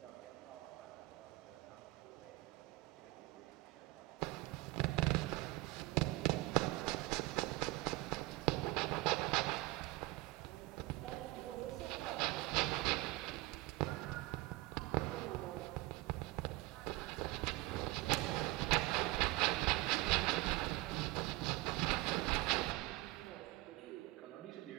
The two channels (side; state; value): left; quieter; 20.6 dB